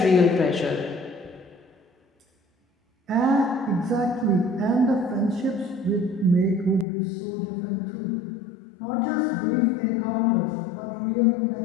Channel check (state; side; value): drops out; right; at 6.9 s